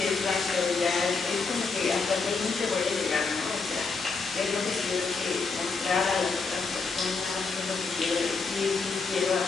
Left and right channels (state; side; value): quieter; right; 4.5 dB